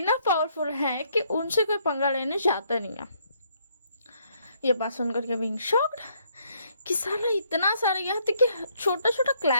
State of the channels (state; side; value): inverted; both; correlation -0.70